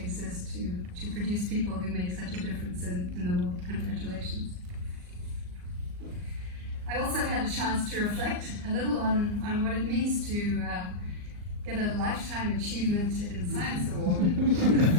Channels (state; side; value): late; left; 39 ms